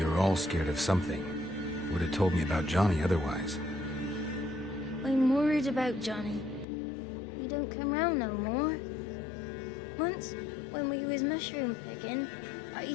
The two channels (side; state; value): right; drops out; at 6.7 s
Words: all scared of something. Would have told me about Johnny otherwise. I'm worried about Johnny. He don't come round no more. Once, when we was mushroom picking, I